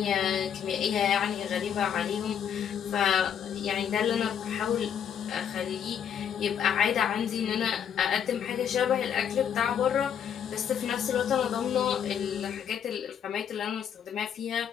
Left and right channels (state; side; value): quieter; right; 8.6 dB